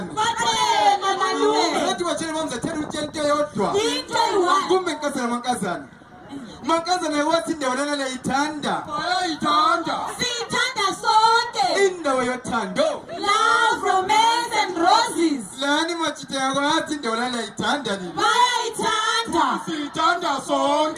bathenga malume bathi batshele mamzathela utshela into eyodwa into eyi-1 kumbe mankazana mankazana wathi indawo lana liyayithanda siyithanda sonke indawo yothando love romance and roses lani machita yako yathi indawo lana liyayithanda nini bayayithanda siyithanda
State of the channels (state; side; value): identical; both; correlation 1.00